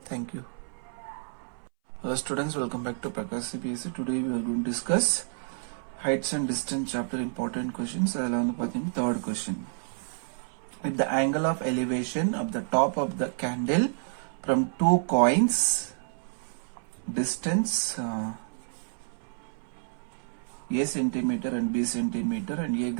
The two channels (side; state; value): left; silent; 58 dB below the other